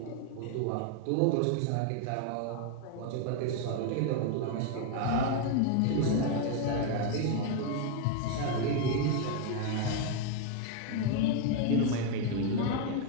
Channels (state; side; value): different; both; correlation 0.01